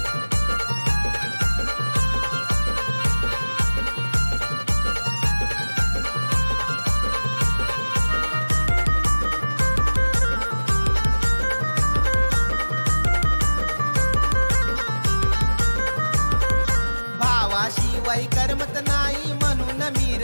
शिवाय करमत नाही म्हणून मी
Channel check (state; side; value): inverted; both; correlation -1.00